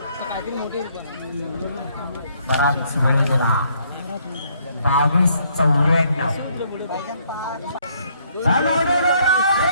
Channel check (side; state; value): both; inverted; correlation -0.68